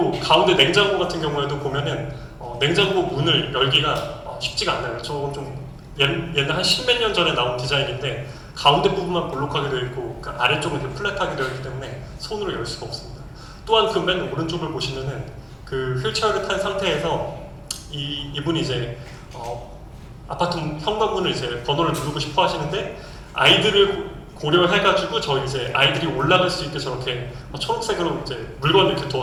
가운데 냉장고 같은 경우에도 보면은 냉장고 문을 열기가 쉽지가 않아요. 저건 좀 옛날 한 십몇 년 전에 나온 디자인인데 가운데 부분만 볼록하게 되어 있고 그 아래쪽은 이렇게 플랫하게 되어 있기 때문에 손으로 열 수가 없습니다. 또한 그 맨 오른쪽을 보시면은 그 휠체어를 탄 상태에서 이분이 이제 아파트 현관문을 이제 번호를 누르고 싶어 하시는데, 아이들을 고려해가지고 저희 이제 아이들이 올라갈 수 있게 저렇게 초록색으로 이제 물건을 이렇게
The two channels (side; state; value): both; identical; correlation 1.00